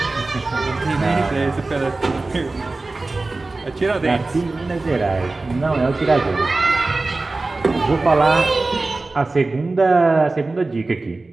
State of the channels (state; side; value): quieter; left; 3.3 dB